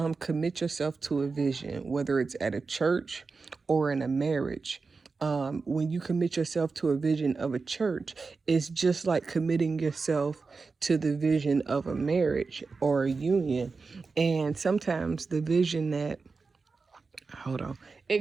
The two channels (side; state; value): left; quieter; 4.4 dB